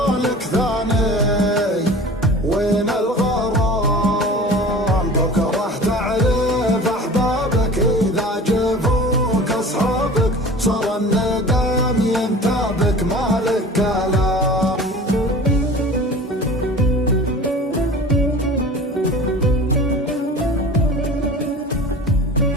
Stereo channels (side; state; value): both; normal; correlation 0.40